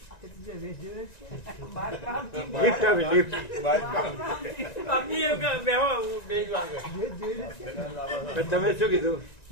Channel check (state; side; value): late; right; 1.9 ms